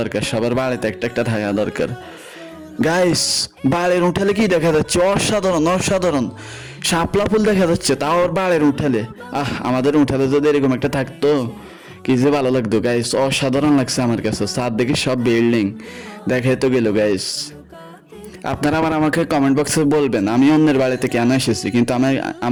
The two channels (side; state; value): both; identical; correlation 1.00